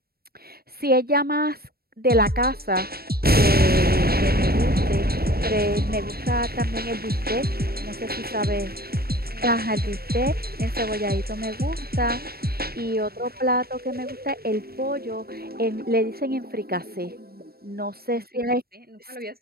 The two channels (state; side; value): late; left; 0.44 ms